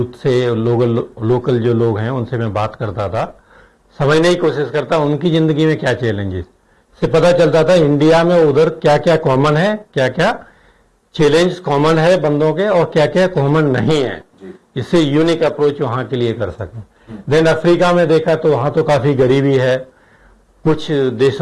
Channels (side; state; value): both; identical; correlation 1.00